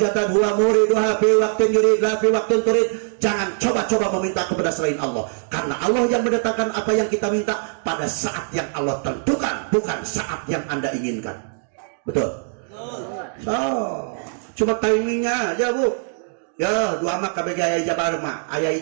huwa muriduha fi waqtin yurid la fi waqtin turid. Jangan coba-coba meminta kepada selain Allah, karena Allah yang mendatangkan apa yang kita minta pada saat yang Allah tentukan, bukan saat yang Anda inginkan. Betul? So, cuma timingnya aja, Bu. Ya, doa mah KBG aya ijabah mah, aya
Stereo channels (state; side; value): silent; left; 64 dB below the other